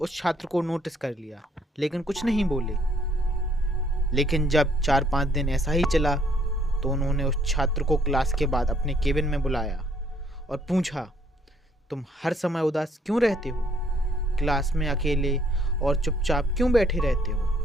छात्र को नोटिस कर लिया, लेकिन कुछ नहीं बोले। लेकिन जब 4-5 दिन ऐसा ही चला तो उन्होंने उस छात्र को क्लास के बाद अपने केबिन में बुलाया और पूछा, तुम हर समय उदास क्यों रहते हो? क्लास में अकेले और चुपचाप क्यों बैठे रहते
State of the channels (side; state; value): both; normal; correlation 0.65